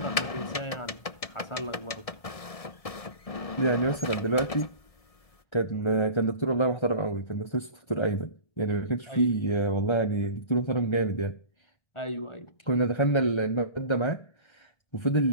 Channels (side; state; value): right; late; 1.7 ms